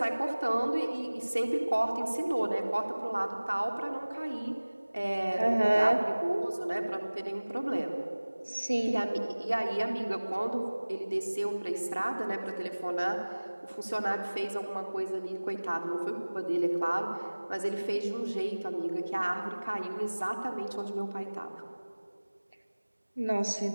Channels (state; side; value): inverted; both; correlation -1.00